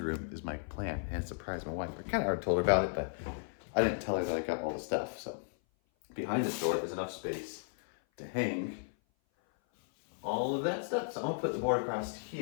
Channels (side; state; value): right; silent; 55 dB below the other